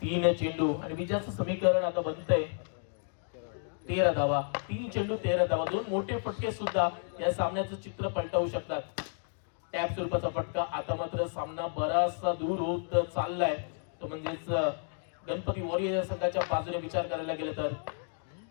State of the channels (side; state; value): right; silent; 57 dB below the other